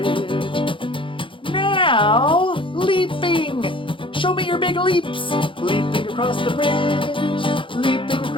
Now leaping. Show me your big leaps. Leaping across the bridge, leaping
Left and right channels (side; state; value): right; late; 0.25 ms